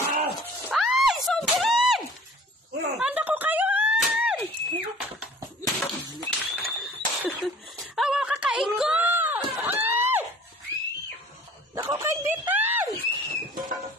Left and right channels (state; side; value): normal; both; correlation 0.48